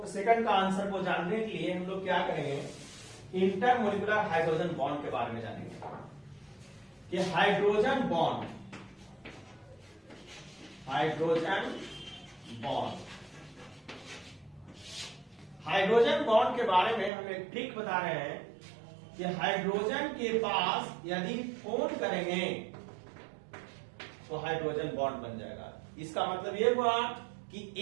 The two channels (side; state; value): left; drops out; at 17.1 s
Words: का आंसर को जानने के लिए हम लोग क्या करेंगे, इंटरमोलिकुलर हाइड्रोजन बॉन्ड के बारे में जानेंगे कि हाइड्रोजन बॉन्ड के बारे में हम एक ट्रिक बता रहे हैं कि हाइड्रोजन के पास यदि फोन करेंगे तो हाइड्रोजन बॉन्ड बन जाएगा। इसका मतलब ये हुआ कि